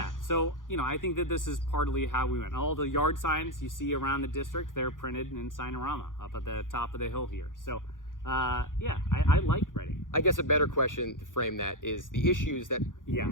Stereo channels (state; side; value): late; right; 0.89 ms